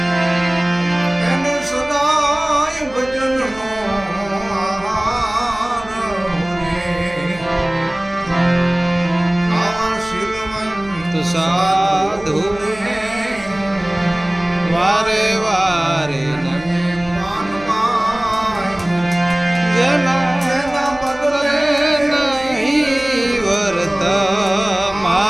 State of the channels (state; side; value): noise; right; hum, 20 dB below the sound